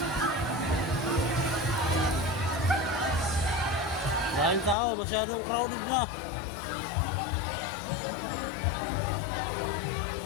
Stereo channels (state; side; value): drops out; right; at 4.8 s